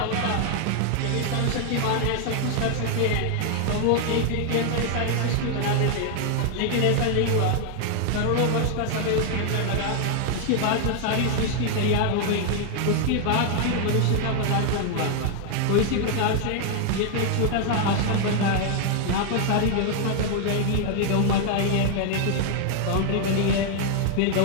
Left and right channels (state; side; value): different; both; correlation 0.00